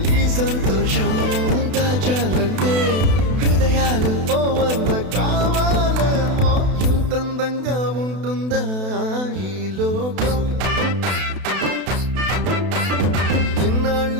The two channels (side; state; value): left; late; 32 ms